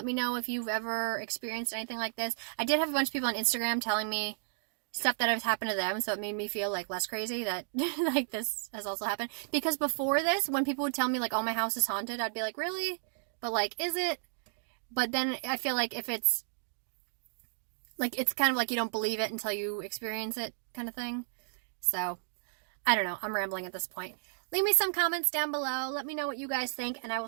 me know if you've ever experienced anything like this. I did have a bunch of people on Instagram telling me stuff that has happened to them, so it made me feel like less crazy that like this has also happened. Because before this, when people would tell me like, oh, my house is haunted, I'd be like, really? But like, is it? But then I feel like if it's like, it's kind of like you don't believe it until you experience it kind of thing. So I don't know, I'm rambling at this point. Leave me some comments down below. Let me know what you guys think, and I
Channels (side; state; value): left; silent; digital silence